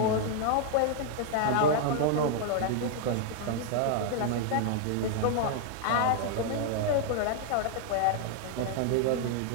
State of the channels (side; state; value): both; different; correlation 0.00